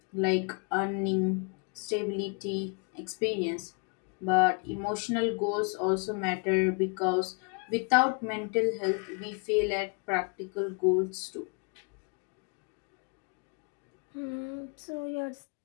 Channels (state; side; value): quieter; right; 36.6 dB